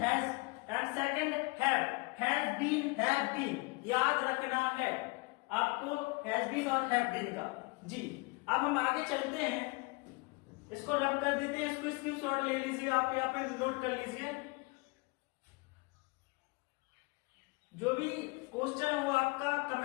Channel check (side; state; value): right; quieter; 27.7 dB